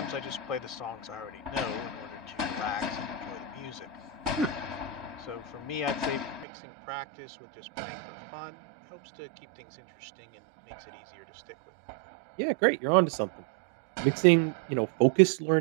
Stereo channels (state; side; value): drops out; left; at 6.5 s